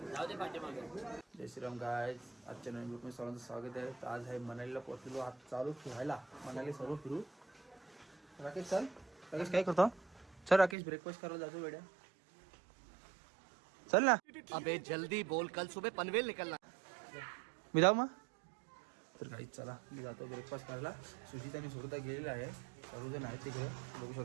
जाऊ दे पाठीमागे. जय श्रीराम गाइस, आजच्या नवीन व्हिडिओ मध्ये सर्वांचं स्वागत आहे. तर आज आहे मनालीला पोहोचलो. आज चालू फिरायला मनाली सर्व फिरू. राकेश चल. राकेश काय करतो? चल राकेश ब्रेकफास्ट करायला जातो वेड्या. चल ना. अबे जल्दी बोल, कल सुबह पनवेल निकलना. मी जाऊ मग. तर गाईस चला मी जातो ब्रेकफास्ट करायला. सुजित आणि सुरता गेलेला आहे. सर्वजण आहेत तिकडे बघू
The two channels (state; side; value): drops out; left; at 10.8 s